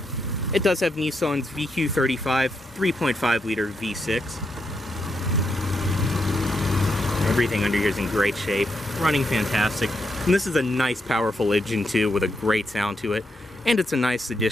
it does have Nissan's VQ35 3.5 liter V6. Everything under here is in great shape, running fantastic. And this is a nice powerful engine too, with a great sound to it. And it's a nice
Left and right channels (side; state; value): both; normal; correlation 0.81